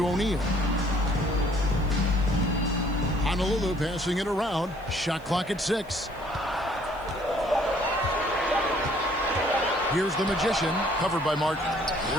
O'Neal. Honolulu passing it around. Shot clock at 6. Here's the Magician, covered by Martin.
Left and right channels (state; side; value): noise; left; hiss, 29 dB below the sound